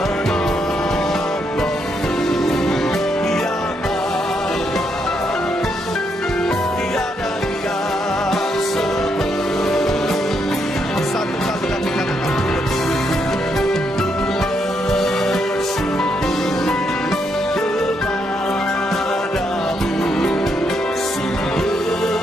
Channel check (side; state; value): both; normal; correlation 0.77